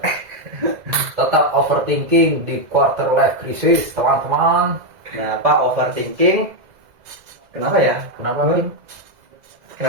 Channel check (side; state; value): left; late; 2.0 ms